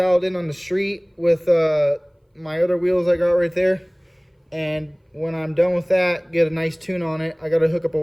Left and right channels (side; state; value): both; identical; correlation 1.00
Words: in on the street with my other wheels I got right there. And when I'm done with that, get a nice tune on it. I got to hook up a